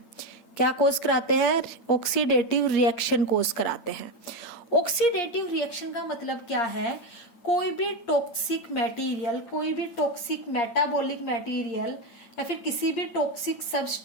क्या कोज कराते हैं? ऑक्सीडेटिव रिएक्शन कोज कराते हैं। ऑक्सीडेटिव रिएक्शन का मतलब क्या है? कोई भी टॉक्सिक मटेरियल, कोई भी टॉक्सिक मेटाबॉलिक मटेरियल या फिर किसी भी टॉक्सिक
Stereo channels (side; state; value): right; late; 8.8 ms